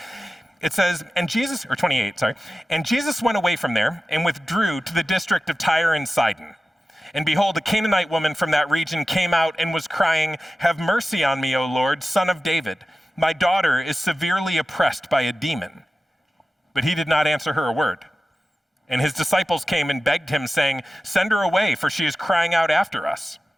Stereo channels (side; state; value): both; normal; correlation 0.95